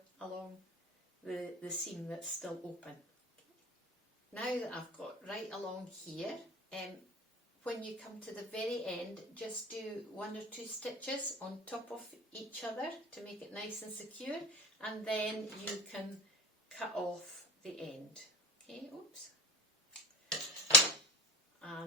along the seam that's still open. Now that I've got right along here, when you come to the very end, just do 1 or 2 stitches on top of each other to make it nice and secure, and then you can cut off the end. Okay, oops.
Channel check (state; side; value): normal; both; correlation 0.33